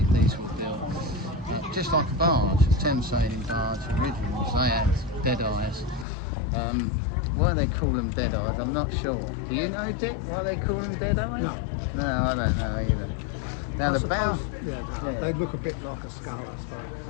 These were built just like a barge, a Thames sailing barge. Originals, they had dead eyes. Why they call them dead eyes, I'm not sure. Do you know, Dick, why they call them dead eyes? No, I don't know either. Now the bow, they look a bit like a skull,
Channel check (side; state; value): right; drops out; at 6.1 s